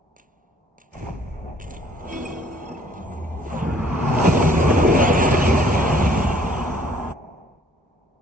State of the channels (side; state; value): both; normal; correlation 0.59